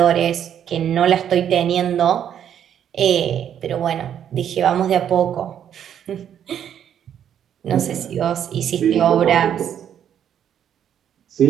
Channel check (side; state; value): left; quieter; 9.4 dB